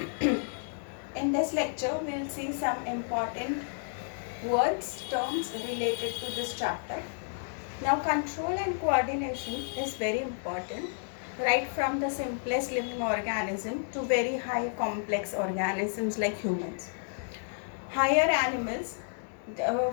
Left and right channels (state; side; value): silent; right; digital silence